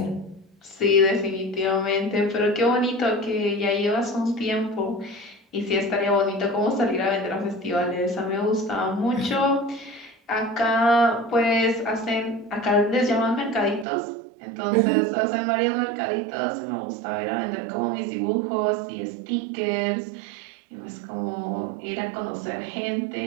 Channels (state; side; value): drops out; left; at 13.9 s